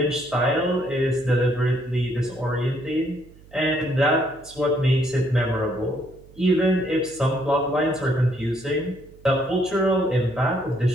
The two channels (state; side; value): noise; right; hum, 24 dB below the sound